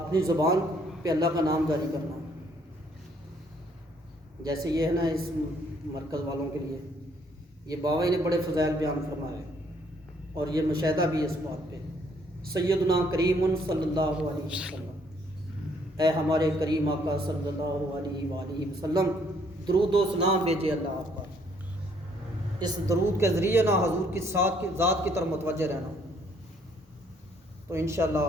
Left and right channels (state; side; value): normal; both; correlation 0.66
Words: زبان پہ اللہ کا نام جاری کرنا، جیسے یہ ہے نا اس مرکز والوں کے لیے، یہ بابا جی نے بڑے فضائل بیان فرمائے اور یہ مشاہدہ بھی اس بات پہ. سیدنا کریم صلی اللہ علیہ وسلم، اے ہمارے کریم آقا صلی اللہ علیہ وآلہ وسلم، درود و سلام بھیجے اللہ آپ پر. اس درود کے ذریعے نہ حضور کی ذات کی طرف متوجہ رہنا، تو انشاءاللہ